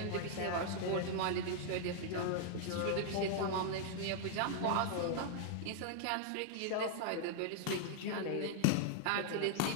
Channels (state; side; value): different; both; correlation -0.01